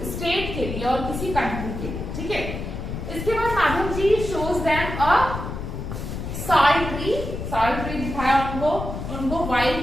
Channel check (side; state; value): left; noise; rumble, 6 dB below the sound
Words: स्टेट के लिए और किसी कंट्री के लिए, ठीक है। इसके बाद Madhav ji shows them a salt tree दिखाया उनको वाइल्ड